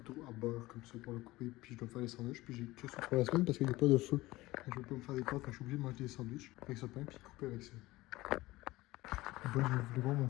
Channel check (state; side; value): quieter; right; 19.0 dB